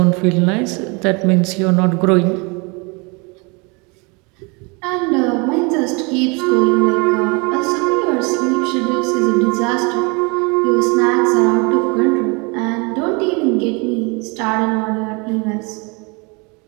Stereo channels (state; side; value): quieter; left; 29.8 dB